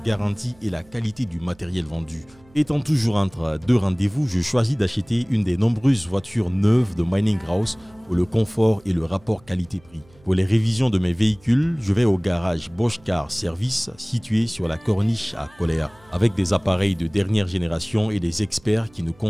et la qualité du matériel vendu. Étant toujours entre deux rendez-vous, je choisis d'acheter une des nombreuses voitures neuves de Mining House pour le confort et le rapport qualité-prix. Pour les révisions de mes véhicules, je vais au garage Bosch Car Service situé sur la corniche à Coléa, avec des appareils de dernière génération et des experts qui nous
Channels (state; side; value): noise; right; hum, 28 dB below the sound